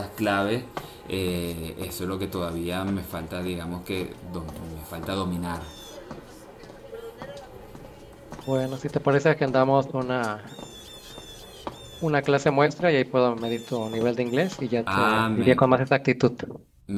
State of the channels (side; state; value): both; identical; correlation 1.00